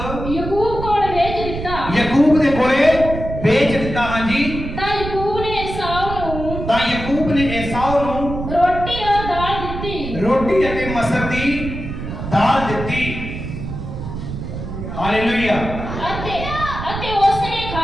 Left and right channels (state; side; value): noise; right; rumble, 7 dB below the sound